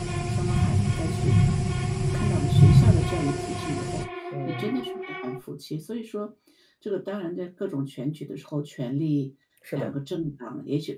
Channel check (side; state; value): both; identical; correlation 1.00